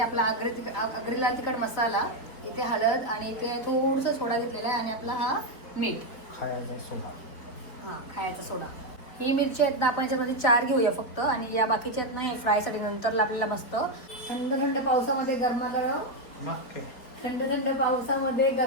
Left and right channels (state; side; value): late; right; 4.6 ms